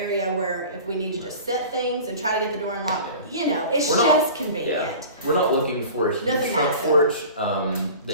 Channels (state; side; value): inverted; both; correlation -0.39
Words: where if we need to just set things and try to get the door unlocked, it's just convenient. Yeah. We're not looking for a huge Doesn't front matter. porch that